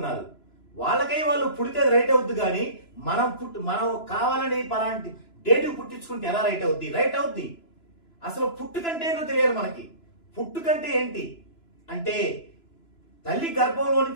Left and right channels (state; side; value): late; right; 2.9 ms